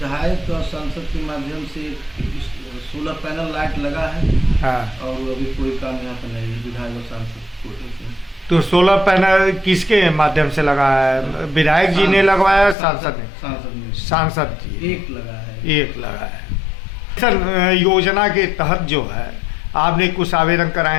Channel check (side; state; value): right; drops out; at 12.8 s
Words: और सांसद के माध्यम से सोलर पैनल लाइट लगा है। और अभी कोई काम यहाँ पर नहीं है विधायक और सांसद कोटे से। तो सोलर पैनल किसके माध्यम से लगा है? विधायक जी ने लगवाया? सांसद ने? सांसद जी एक लगा है। सर, योजना के तहत जो है आपने कुछ आवेदन